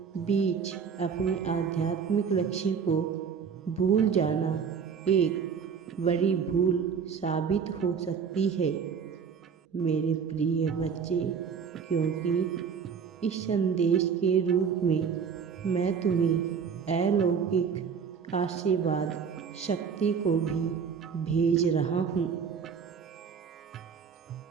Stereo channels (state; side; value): quieter; left; 6.6 dB